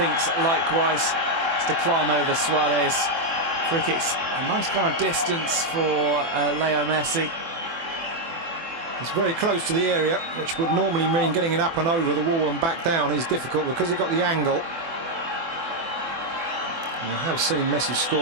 likewise. It's to climb over Suarez. Free kicks, a nice kind of distance for Leo Messi. It's very close to the area, which would normally mean getting it up and over the wall and back down is difficult because he got the angle. And I have seen Messi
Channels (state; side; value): late; left; 24 ms